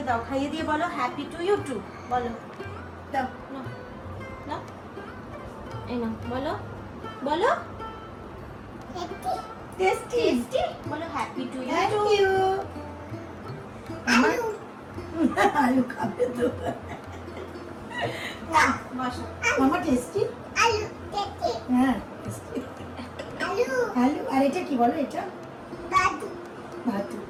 দাও, খাইয়ে দিয়ে বলো হ্যাপি টু ইউ টু বলো। দাও। নাও নাও, এই নাও বলো বলো টেস্টি। টেস্টি বলো happy to you thank to. You. আলু খাবে তো। বসো। মামা টেস্টি। হ্যাঁ tasty। আলু আর এটা কি বলো, এটা ভাতু। একটু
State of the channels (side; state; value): both; identical; correlation 1.00